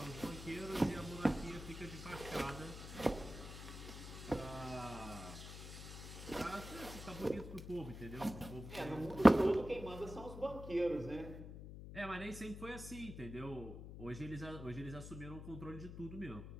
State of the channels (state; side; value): noise; left; hum, 10 dB below the sound